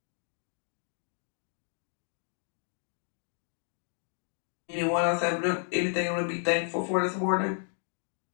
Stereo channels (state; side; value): silent; right; digital silence